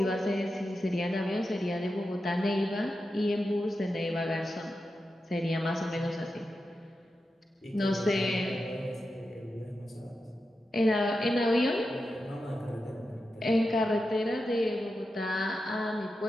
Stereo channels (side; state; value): both; normal; correlation 0.90